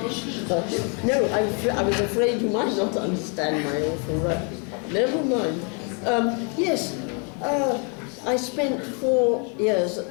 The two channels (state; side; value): quieter; right; 37.1 dB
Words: No, I was afraid you might not understand my awful Russian. Never mind. Yes, I spent 4 years